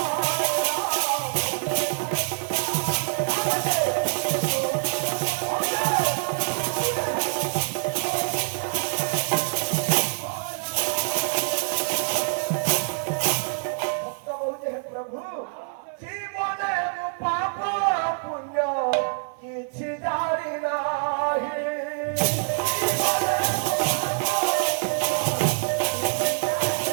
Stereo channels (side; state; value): left; silent; 61 dB below the other